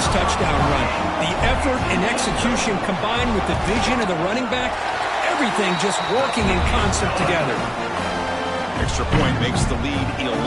touchdown run? The effort and execution combined with the vision of the running back, everything just working in concert together. Extra point makes the lead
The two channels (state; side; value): identical; both; correlation 1.00